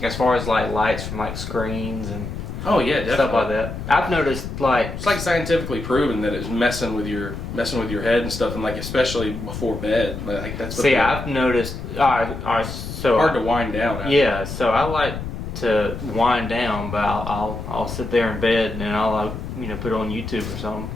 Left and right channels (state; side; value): noise; left; rumble, 7 dB below the sound